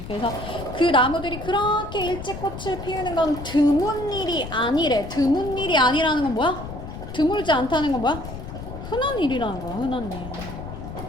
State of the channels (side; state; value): left; noise; rumble, 10 dB below the sound